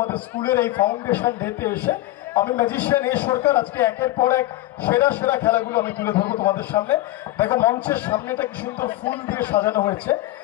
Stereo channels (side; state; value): right; quieter; 16.6 dB